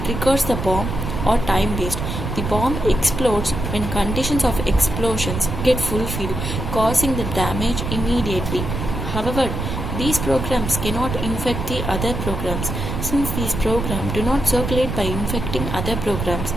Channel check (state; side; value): noise; right; rumble, 4 dB below the sound